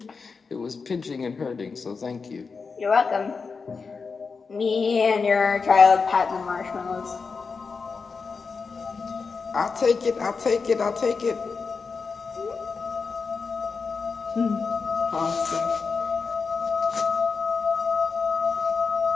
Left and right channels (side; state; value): right; quieter; 4.9 dB